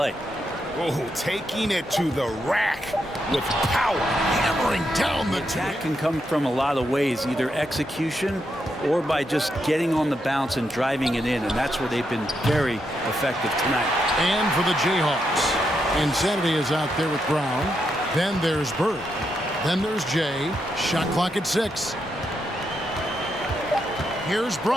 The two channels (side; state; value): both; normal; correlation 0.82